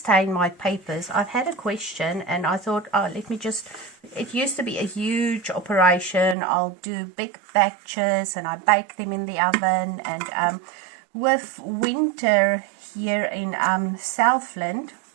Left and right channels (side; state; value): left; drops out; at 6.4 s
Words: my papers. I've had a question, and I thought, oh, let me just, it used to be a huge operation. I'll do big batches and I bake them in the oven, and with winter here in Southland,